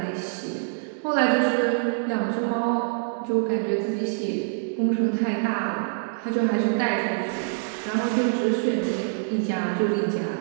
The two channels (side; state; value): left; silent; 62 dB below the other